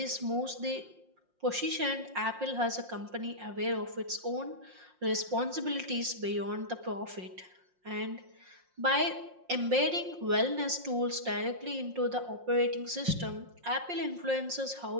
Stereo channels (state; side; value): late; left; 5.6 ms